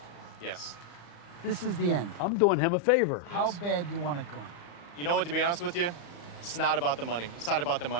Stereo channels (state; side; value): late; right; 35 ms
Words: Yes. This is the end. I'm doing him a favor. How bad do you want it gone? You know what, to be honest with you, it's not about the money. It's not about the